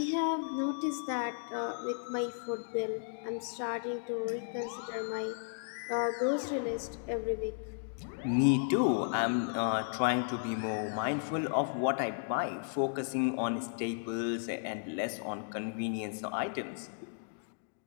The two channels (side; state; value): right; silent; digital silence